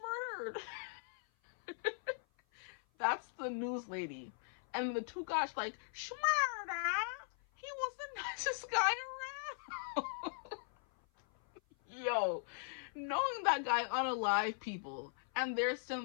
murdered? That's the news lady. And the two guys like, Schmurda, he was the nicest guy around. Yo, knowing that guy unalive people, and they're sitting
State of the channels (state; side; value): silent; right; 51 dB below the other